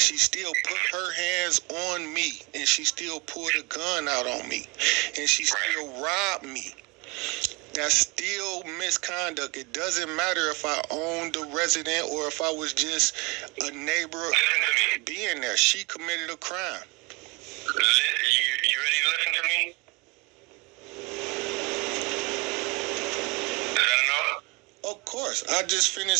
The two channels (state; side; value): quieter; left; 26.2 dB